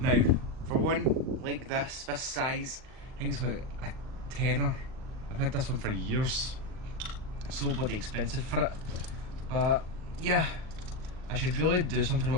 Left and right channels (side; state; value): left; late; 38 ms